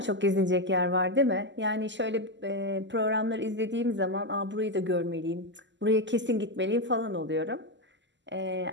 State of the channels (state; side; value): late; left; 0.53 ms